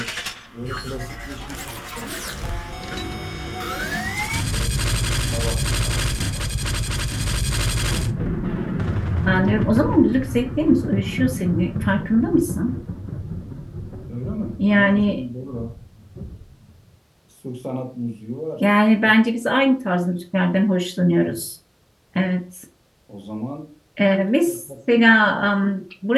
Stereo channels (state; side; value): identical; both; correlation 1.00